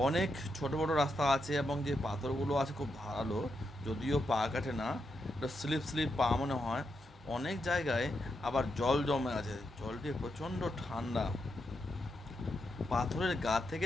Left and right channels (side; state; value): both; normal; correlation 0.83